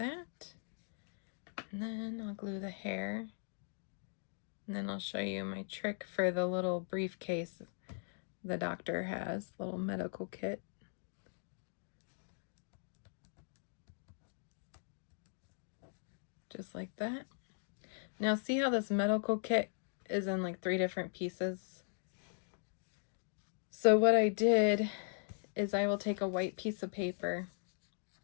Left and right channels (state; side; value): silent; right; digital silence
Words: And then I'll glue the hair. And then I'll show you my trick for the little briefcase the doctor has, little medical kit. Just like that. Now see how this medical kit is in like 3 different pieces? So what I did is I will take a white piece of paper,